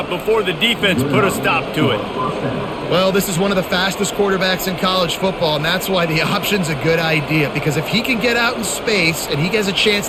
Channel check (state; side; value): identical; both; correlation 1.00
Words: before the defense put a stop to it. Well, this is one of the fastest quarterbacks in college football, and that's why the option's a good idea, because if he can get out in space and he has a chance